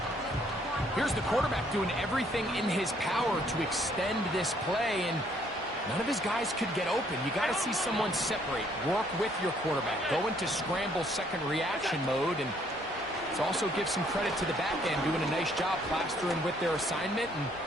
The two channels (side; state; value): both; normal; correlation 0.66